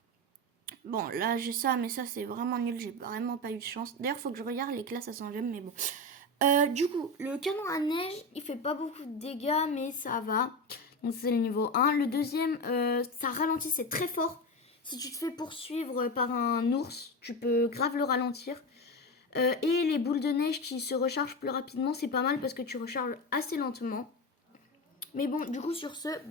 Bon, là, j'ai ça, mais ça, c'est vraiment nul. J'ai vraiment pas eu de chance. D'ailleurs, faut que je regarde les classes à 100 gemmes, mais bon... du coup, le canon à neige, il fait pas beaucoup de dégâts, mais ça va. Donc c'est le niveau 1. Le deuxième, ça ralentit, c'est très fort. Si tu te fais poursuivre par un ours, tu peux grave le ralentir. Et les boules de neige qui se rechargent plus rapidement, c'est pas mal parce que tu recharges assez lentement. Mais bon, du coup sur ce,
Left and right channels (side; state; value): both; normal; correlation 0.20